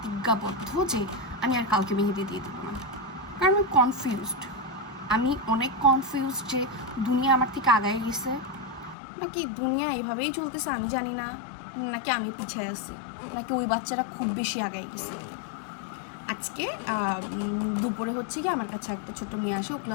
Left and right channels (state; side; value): drops out; right; at 9.0 s